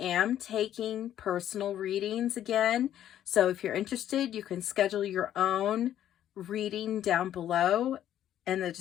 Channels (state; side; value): quieter; right; 11.3 dB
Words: taking personal readings again. So if you're interested, you can schedule your own reading down below in the